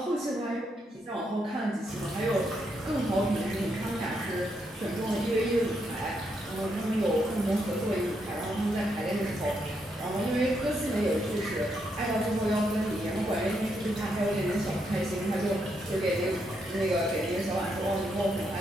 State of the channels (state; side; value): normal; both; correlation 0.79